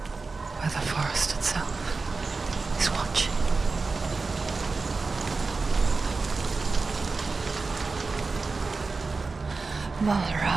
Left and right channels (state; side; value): quieter; left; 4.1 dB